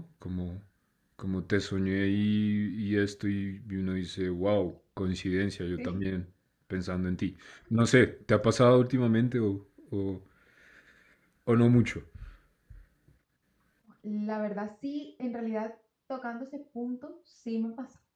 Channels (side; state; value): both; identical; correlation 1.00